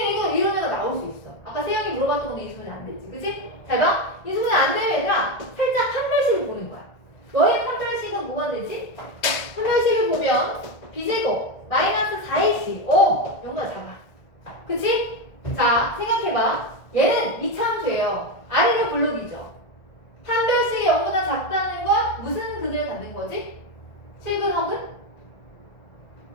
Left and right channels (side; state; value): right; late; 1.6 ms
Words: 이거 이런 애가 나올 수 있어. 아까 세영이 물어봤던 것도 인수분해 안 되지. 그치? 잘 봐. 인수분해 안 되면 얘들아 살짝 판별식을 보는 거야. 너의 판별식은 뭐가 되지? 판별식을 보면 b제곱 마이너스 4ac. 오! 영도가 작아. 그치? 자, 생각해봐. 얘는 이차함수예요. 아래를 블록이죠. 판별식이 0보다 작다는 건 무슨 근을 갖는 거지? 실근, 허근?